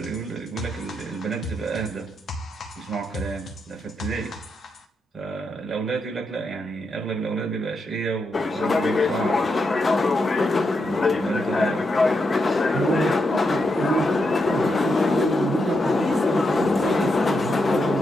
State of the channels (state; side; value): normal; both; correlation 0.83